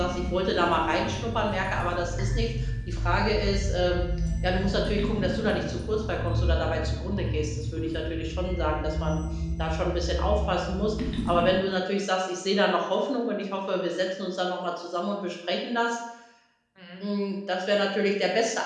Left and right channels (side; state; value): both; identical; correlation 1.00